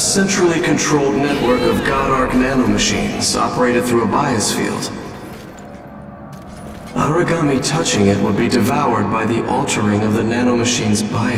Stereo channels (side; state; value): both; identical; correlation 1.00